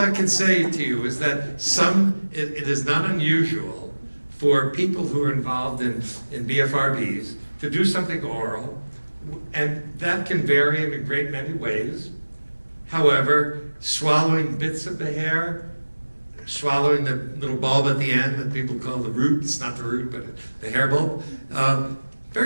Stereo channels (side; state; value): both; inverted; correlation -1.00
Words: can say to you is that it is not unusual for people who are involved in BFRBs to do something oral, and that can vary in a great many ways. However, swallowing bits of the hair, swallowing the little bulb at the end that people call the root, it's not the root, but the hair bulb,